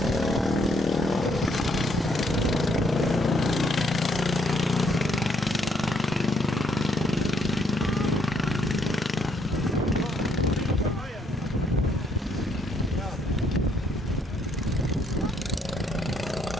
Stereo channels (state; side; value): normal; both; correlation 0.70